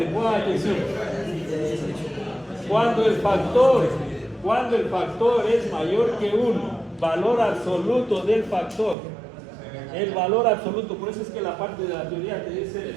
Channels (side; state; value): left; drops out; at 9.0 s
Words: pongan atención. Cuando el factor es mayor que 1, valor absoluto del factor, el valor absoluto, por eso es que la parte de la teoría te